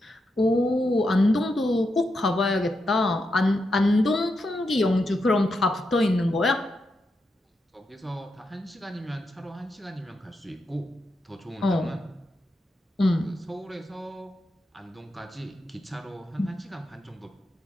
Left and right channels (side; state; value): both; normal; correlation 0.85